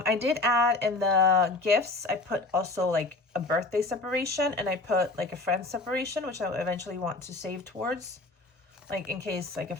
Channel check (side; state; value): right; quieter; 3.2 dB